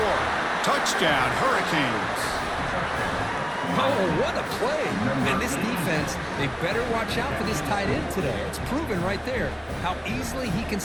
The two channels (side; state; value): both; identical; correlation 1.00